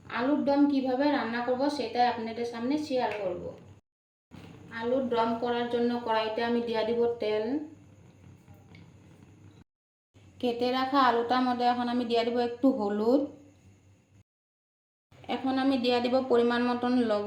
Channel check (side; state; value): both; identical; correlation 1.00